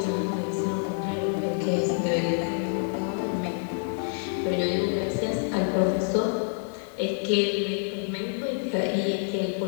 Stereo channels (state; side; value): silent; right; 59 dB below the other